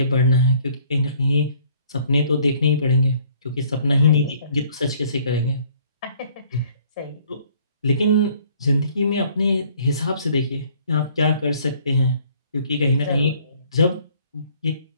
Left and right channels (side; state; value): both; inverted; correlation -0.59